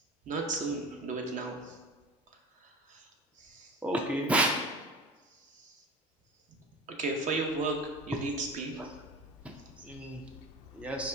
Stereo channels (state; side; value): normal; both; correlation 0.34